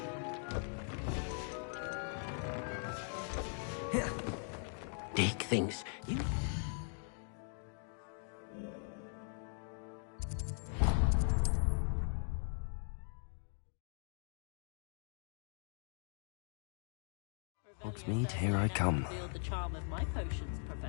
Deek thinks you... Hogsmeade, here I come. Revealed the charm of my potions,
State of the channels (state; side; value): silent; right; 51 dB below the other